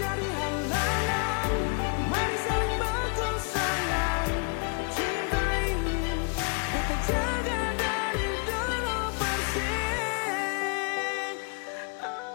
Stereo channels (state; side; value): quieter; right; 35.3 dB